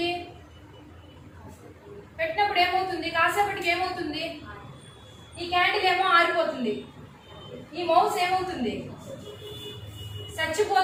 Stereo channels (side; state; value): both; identical; correlation 1.00